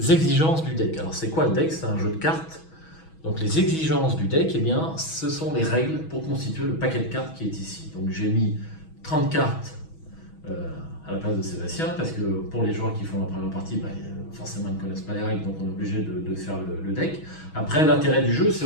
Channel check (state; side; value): late; right; 6.2 ms